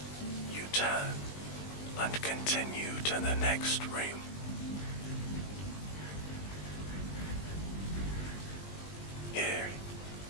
you turn and continue to the next room. Here,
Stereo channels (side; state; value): right; late; 20 ms